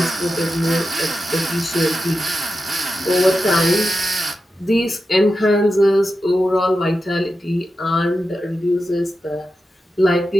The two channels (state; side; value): normal; both; correlation 0.90